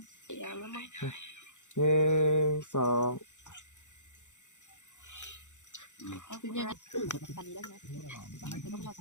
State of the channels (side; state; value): right; late; 0.85 ms